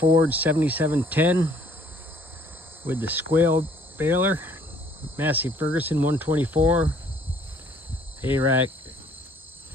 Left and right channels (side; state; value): both; normal; correlation 0.60